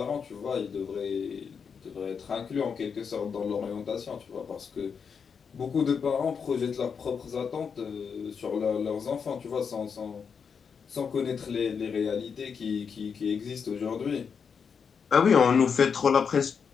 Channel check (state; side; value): quieter; right; 6.3 dB